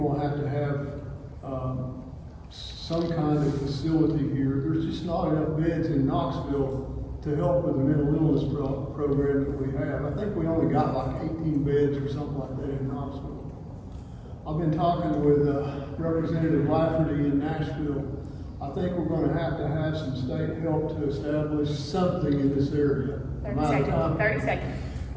gonna have to have, some kind of facility here. There's just not enough beds in Knoxville to help with the mental illness program that we have. I think we only got like 18 beds or something like that in Knoxville. I've been talking with, Representative Lafferty in Nashville. I think we're gonna have to have some state help to establish something in this area. 30 seconds.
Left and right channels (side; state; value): both; identical; correlation 1.00